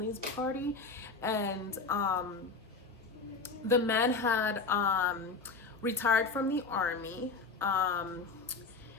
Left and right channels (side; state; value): right; quieter; 4.2 dB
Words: party, and the man had retired from the army,